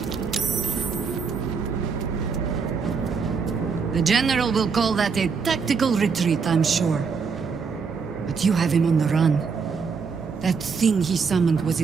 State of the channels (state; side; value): quieter; left; 5.5 dB